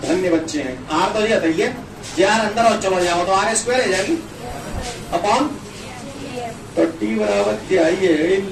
धन्य बच्चे हैं। आर तो ये बताइए जे आर अंदर और चलो जाओ तो आर स्क्वायर है जाएगी अपॉन, तो टी बराबर क्या ये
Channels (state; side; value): identical; both; correlation 1.00